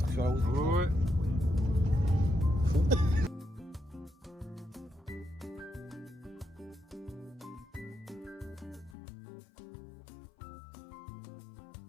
sur la route. Ouais.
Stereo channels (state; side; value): drops out; right; at 9.0 s